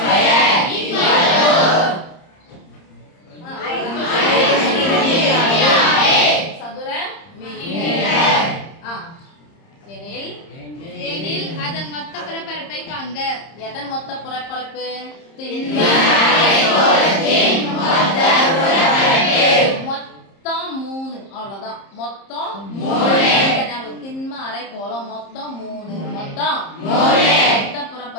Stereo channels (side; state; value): right; late; 30 ms